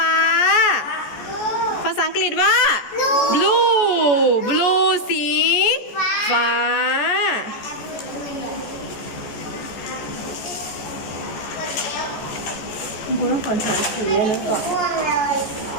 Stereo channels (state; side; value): late; right; 14 ms